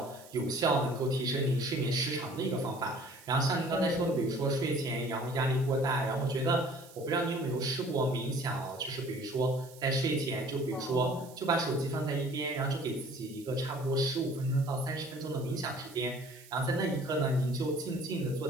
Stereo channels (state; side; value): noise; right; hiss, 21 dB below the sound